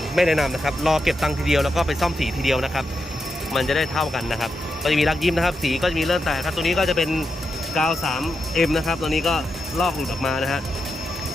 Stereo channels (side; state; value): both; normal; correlation 0.86